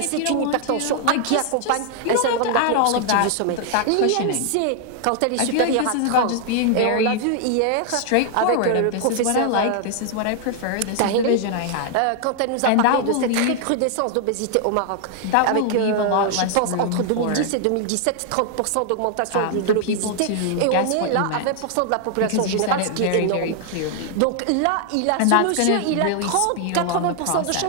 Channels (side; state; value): both; different; correlation 0.00